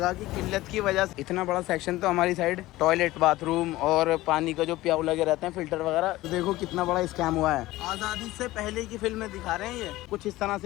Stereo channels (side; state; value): right; quieter; 17.5 dB